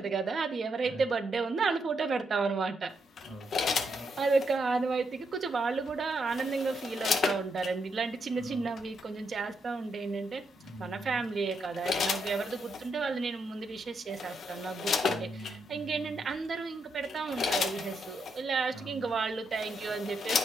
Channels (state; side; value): normal; both; correlation 0.79